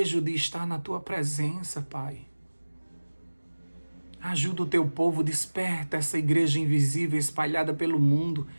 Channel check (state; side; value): inverted; both; correlation -1.00